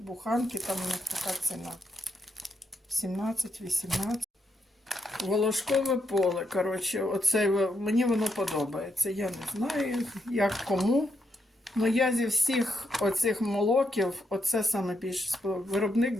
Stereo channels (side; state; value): both; normal; correlation 0.79